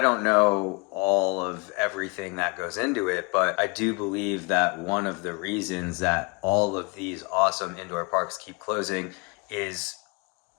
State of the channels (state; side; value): quieter; right; 30.3 dB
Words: know all of everything that goes into it, but I do believe that one of the reasons that all of these awesome indoor parks keep closing is